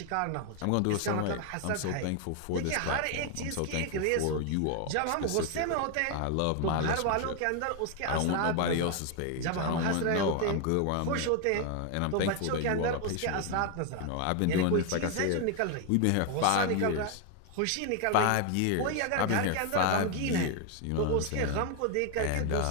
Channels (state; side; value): different; both; correlation 0.01